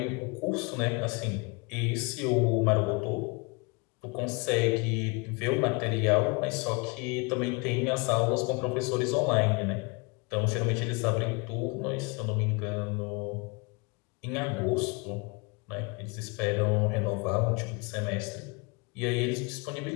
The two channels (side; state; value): right; quieter; 29.9 dB